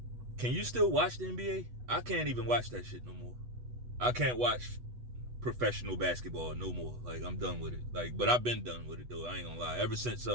can you still watch the NBA? I can't even watch that shit no more. I can't watch professional basketball no more. Like, I'm done with it. Like, but I've been done with it though. I ain't gonna lie. Ever since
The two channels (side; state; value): left; late; 8.1 ms